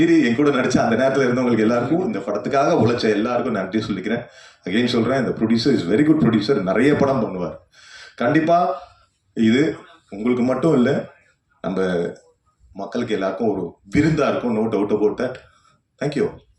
என் கூட நடிச்ச அந்த நேரத்தில் இருந்தவங்களுக்கு எல்லாருக்கும், இந்த படத்துக்காக உழைச்ச எல்லாருக்கும் நன்றி சொல்லிக்கிறேன். அகைன் சொல்றேன், இந்த producer is very good producer. நிறைய படம் பண்ணுவார். கண்டிப்பா இது உங்களுக்கு மட்டும் இல்லை, நம்ம மக்களுக்கு எல்லாருக்கும் ஒரு விருந்தா இருக்கும். No doubt about that. Thank you.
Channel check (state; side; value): identical; both; correlation 1.00